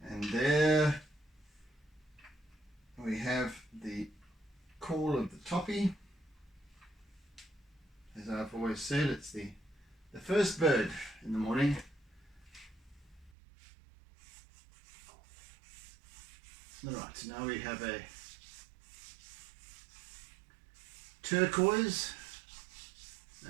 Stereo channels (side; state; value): left; drops out; at 13.3 s